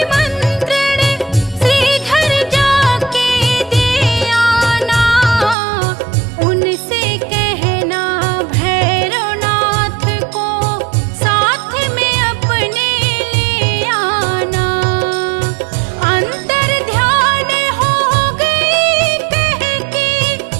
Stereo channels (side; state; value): left; drops out; at 5.6 s